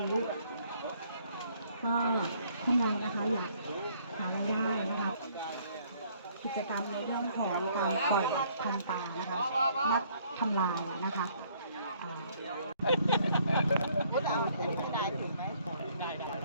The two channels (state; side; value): inverted; both; correlation -0.63